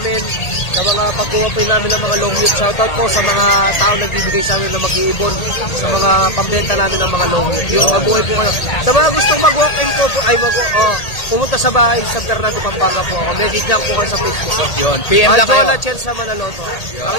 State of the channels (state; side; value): late; right; 1.8 ms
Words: sa mga pagkuha po namin ng mga long meat. Shoutout po sa mga tao nagbibigay sa amin ng mag-iibon. Sa mga pambenta namin ng mga long meat. Yun, mabuhay po kayo. Sa mga gustong mag-walk-in po, pumunta sa bahay sa Fernando, Pampanga po ako. Message lang po kayo sa Facebook. Yun, PM lang kayo. Jola Chen sa Manaloto. Ang